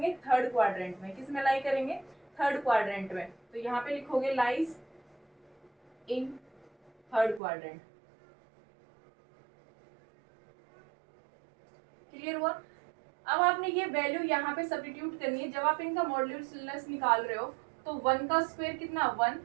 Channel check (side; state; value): left; drops out; at 7.4 s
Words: थर्ड क्वाड्रेंट में। किस में लाई करेंगे, थर्ड क्वाड्रेंट में। तो यहाँ पे लिखोगे lies in third quadrant. Clear हुआ। अब आपने ये वैल्यू यहाँ पे सब्स्टिट्यूट करनी है। जब आप इनका मॉडुलस निकाल रहे हो तो 1 का स्क्वायर कितना,